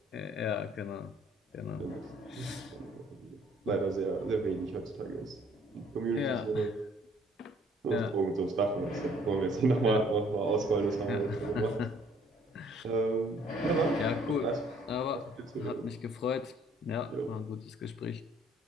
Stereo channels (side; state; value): both; normal; correlation 0.61